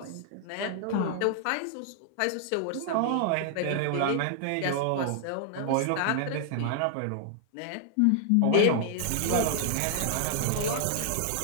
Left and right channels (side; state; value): both; different; correlation 0.00